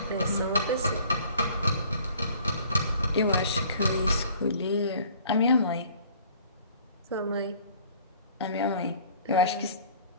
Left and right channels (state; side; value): inverted; both; correlation -0.52